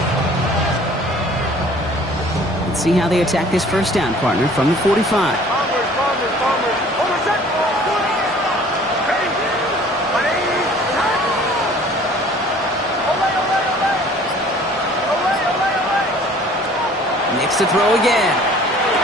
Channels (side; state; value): both; normal; correlation 0.51